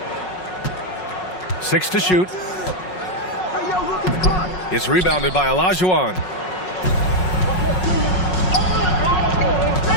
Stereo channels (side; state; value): right; late; 5.5 ms